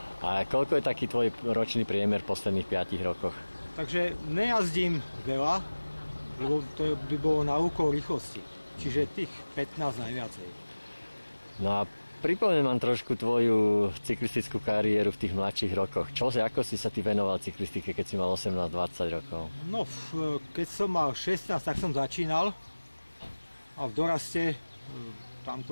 A koľko je taký tvoj ročný priemer v posledných 5 rokoch? Takže nejazdím veľa, lebo to by bolo na úkor rýchlosti. Čiže tých 15 najviacej. No a pripomeň mám trošku tvoju cyklistickú kariéru v tých mladších rokoch. Ako si sa ty venoval cyklistike, keď si mal 18-20 rokov? No, keď som mal 16, tak som začínal. A v doraste, tam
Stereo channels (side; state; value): both; inverted; correlation -1.00